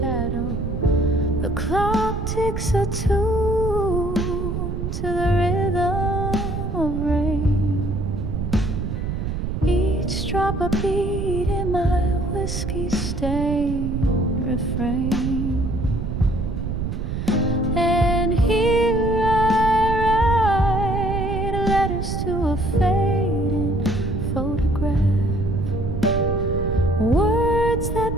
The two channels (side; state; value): right; noise; rumble, 3 dB below the sound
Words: The clock ticks a tune to the rhythm of rain. Each drop a beat in my whiskey-stained refrain. And here I write letters to a fading photograph, words